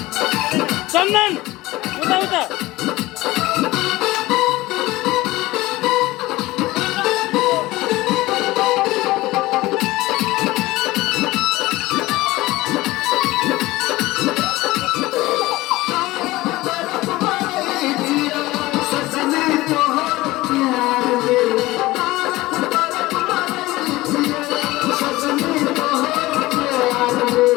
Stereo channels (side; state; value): right; quieter; 18.9 dB